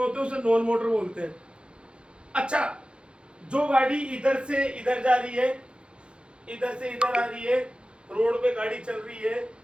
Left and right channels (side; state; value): left; late; 0.055 ms